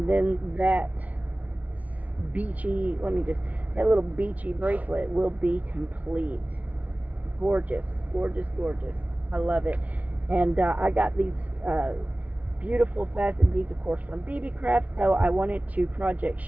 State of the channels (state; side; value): late; left; 0.070 ms